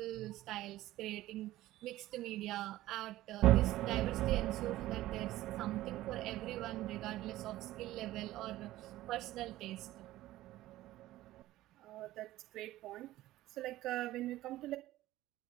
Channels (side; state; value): left; quieter; 15.7 dB